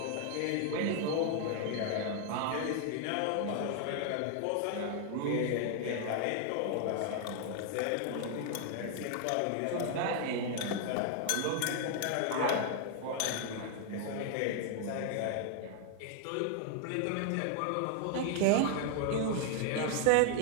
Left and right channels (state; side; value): different; both; correlation 0.00